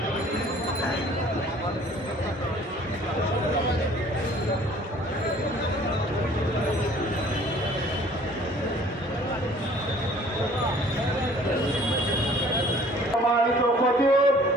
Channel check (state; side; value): normal; both; correlation 0.53